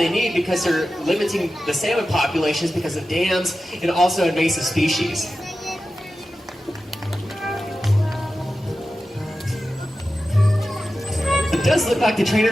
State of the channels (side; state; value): both; normal; correlation 0.93